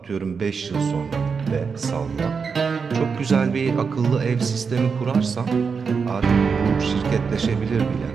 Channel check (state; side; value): quieter; left; 5.6 dB